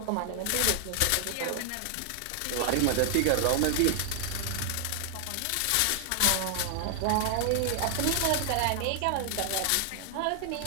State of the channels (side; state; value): both; different; correlation 0.00